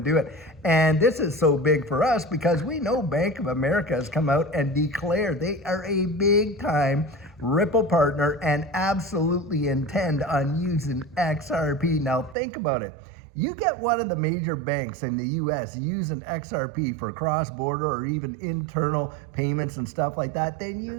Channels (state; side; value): drops out; left; at 12.4 s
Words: do it. And this is so big for us because we know Bank of America has come out and declared they are a big time Ripple partner and absolutely intend on using XRP. Now think about it. You get one of the major banks in the US using XRP for cross-border or even internal payments and stuff like that, then